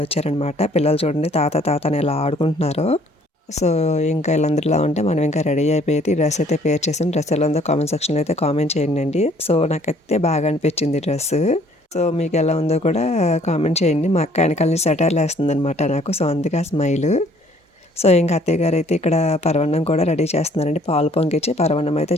వచ్చారనమాట. పిల్లలు చూడండి తాత తాత అని ఎలా ఆడుకుంటున్నారు. సో ఇంకా వీళ్ళందరిలా ఉంటే మనం ఇంకా రెడీ అయిపోయి డ్రెస్ అయితే పేర్ చేసాం. డ్రెస్ ఎలా ఉందో కామెంట్ సెక్షన్లో అయితే కామెంట్ చేయండి. సో నాకైతే బాగా అనిపించింది డ్రెస్. సో మీకు ఎలా ఉందో కూడా కామెంట్ చేయండి. మా అక్క వెనకాల నుంచి సెటైర్లు వేస్తుంది అనమాట నాకు. సో అందుకే ఆ స్మైల్. సో ఇంకా అత్తయ్య గారు అయితే ఇక్కడ పరవన్నం కూడా రెడీ చేస్తున్నారండి. పాలు పొంగిచ్చి పరవన్నం అయితే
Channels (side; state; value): both; normal; correlation 0.59